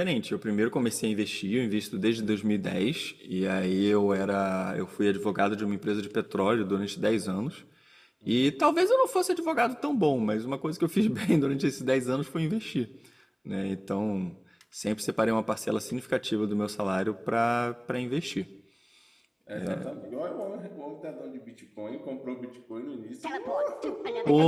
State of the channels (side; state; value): both; identical; correlation 1.00